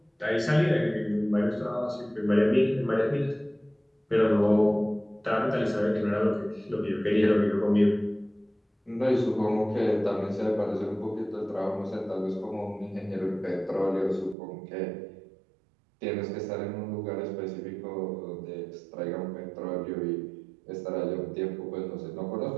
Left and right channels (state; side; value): drops out; left; at 14.4 s